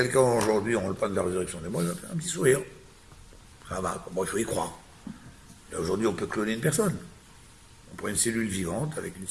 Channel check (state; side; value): identical; both; correlation 1.00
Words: aujourd'hui, on parle de la résurrection des morts, il va faire un petit sourire. Ça va, bon, il faut y croire. Et aujourd'hui, on peut cloner une personne. On prend une cellule vivante avec une